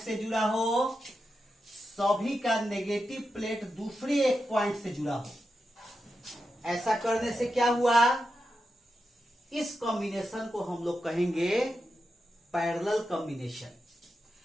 जुड़ा हो, सभी का नेगेटिव प्लेट दूसरे एक पॉइंट से जुड़ा हो। ऐसा करने से क्या हुआ, इस कॉम्बिनेशन को हम लोग कहेंगे पैरेलल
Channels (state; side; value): normal; both; correlation 0.88